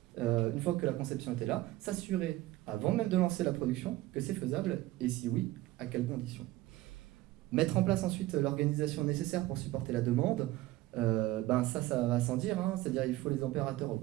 une fois que la conception était là, s'assurer, avant même de lancer la production, que c'est faisable, et si oui, à quelles conditions. Mettre en place ensuite l'organisation nécessaire pour supporter la demande, ça va sans dire, c'est-à-dire il faut les opérateurs au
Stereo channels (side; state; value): left; quieter; 17.0 dB